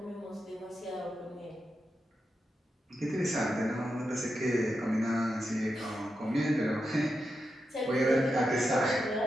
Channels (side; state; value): both; normal; correlation 0.87